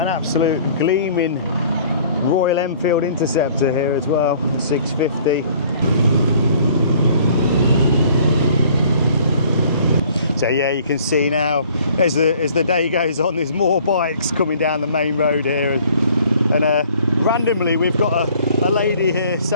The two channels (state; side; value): inverted; both; correlation -0.55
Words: absolute gleaming Royal Enfield Interceptor here as well, the 650. So yeah, you can see now as the day goes on, there's more bikes coming down the main road here, and randomly we've got a lady here